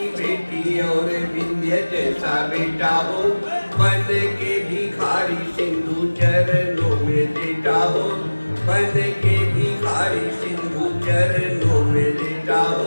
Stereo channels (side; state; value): both; inverted; correlation -1.00